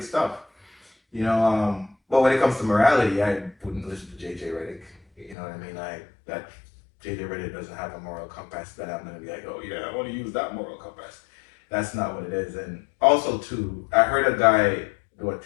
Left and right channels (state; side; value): drops out; right; at 5.4 s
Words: stuff. You know, but when it comes to morality, I wouldn't listen to JJ Redick. You know what I mean? That JJ Redick doesn't have a moral compass that I'm gonna be like, oh yeah, I want to use that moral compass. That's not what it is. And also too, I heard a guy do a